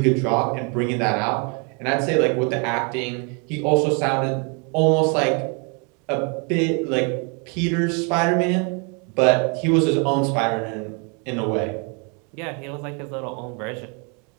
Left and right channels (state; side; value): quieter; left; 35.4 dB